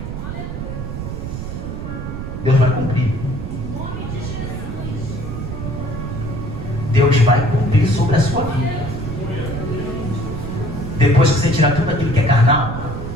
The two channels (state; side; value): noise; right; rumble, 6 dB below the sound